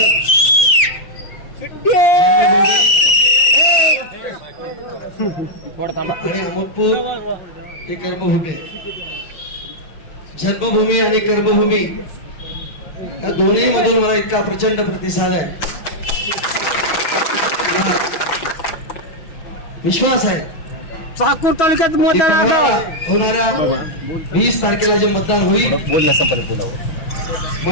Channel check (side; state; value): right; late; 6.2 ms